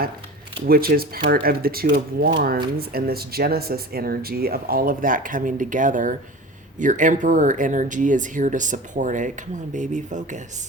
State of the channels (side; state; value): both; normal; correlation 0.35